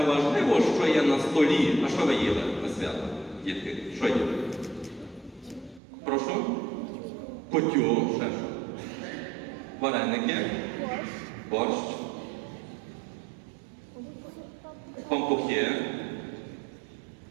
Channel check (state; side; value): drops out; left; at 5.8 s